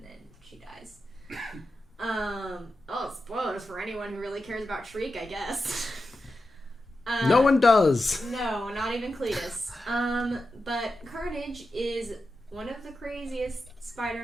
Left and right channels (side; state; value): both; normal; correlation 0.90